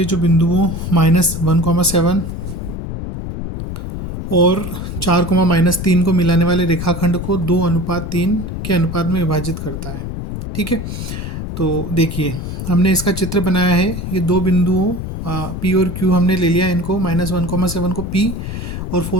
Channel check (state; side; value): noise; left; rumble, 6 dB below the sound